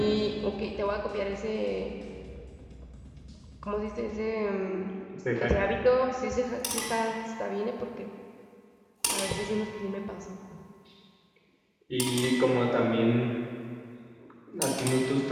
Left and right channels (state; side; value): identical; both; correlation 1.00